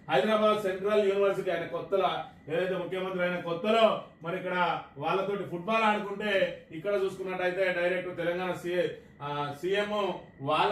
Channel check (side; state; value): both; identical; correlation 1.00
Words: Hyderabad central university ఆయన కొత్తలో ఏదైతే ముఖ్యమంత్రి అయిన కొత్తలో మరి ఇక్కడ వాళ్ళతోటి ఫుట్బాల్ ఆడుకుంటే, ఇక్కడ చూసుకున్నట్టయితే డైరెక్ట్ తెలంగాణ సీఎం